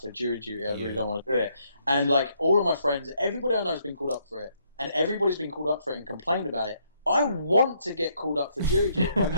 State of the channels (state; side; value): inverted; both; correlation -0.72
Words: jury duty. I really don't want to do it, and like all of my friends, everybody I know has been called up for it, and everybody's been called up for it and complained about it. I want to get called up for jury duty. I've